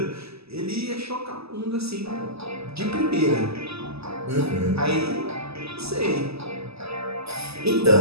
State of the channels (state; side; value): late; left; 0.78 ms